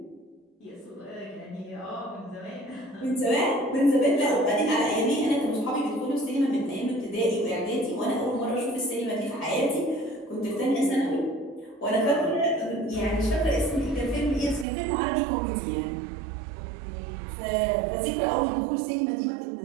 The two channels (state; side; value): drops out; left; at 14.7 s